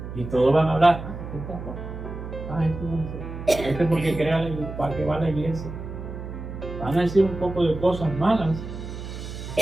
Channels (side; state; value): right; noise; hum, 9 dB below the sound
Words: Y todos van a hablar, ¿qué está? Este porque crea la iglesia, para que va a la iglesia. Van a decir un poco de cosas malas.